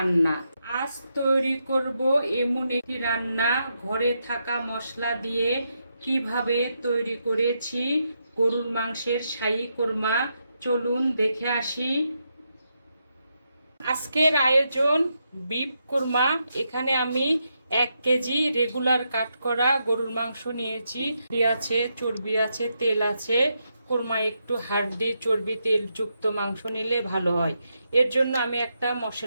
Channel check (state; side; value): inverted; both; correlation -0.83